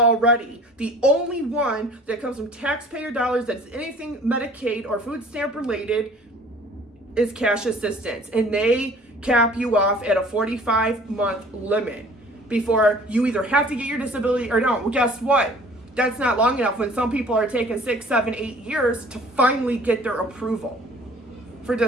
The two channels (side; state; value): both; normal; correlation 0.50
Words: The only one that comes from taxpayer dollars that's anything Medicaid or food stamp related is cash assistance, and they cap you off at a 45-month limit before you either have to get your disability or don't. Well, guess what? That's not long enough when some people are taking 6, 7, 8 years to finally get their approval for